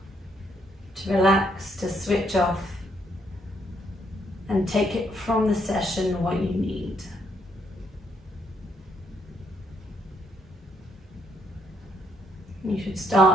to relax, to switch off, and take it from the session what you need. You should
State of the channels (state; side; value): normal; both; correlation 0.73